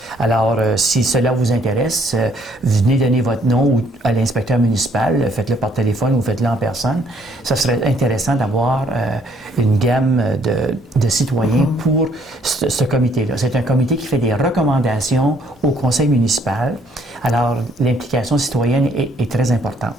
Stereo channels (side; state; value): both; normal; correlation 0.65